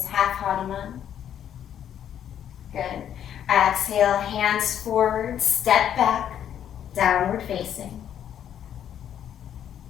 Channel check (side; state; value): right; quieter; 9.8 dB